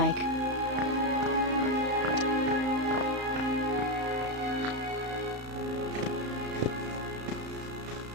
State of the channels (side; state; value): left; late; 34 ms